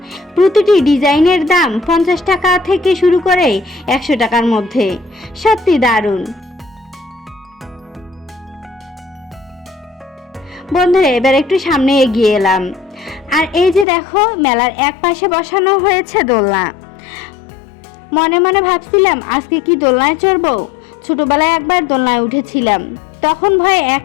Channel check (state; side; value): drops out; right; at 13.9 s